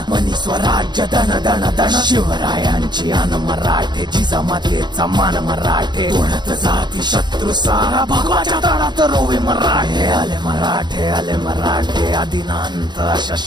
मनी स्वराज्य दन दन दन शिवरायांची अन मराठे जिजामातेचा मान मराठे ओढत जाती शत्रू सारा भगवाच्या तळात रोवे मराठे आले मराठे आले मराठे आदिनांत अशा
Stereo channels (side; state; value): left; late; 0.21 ms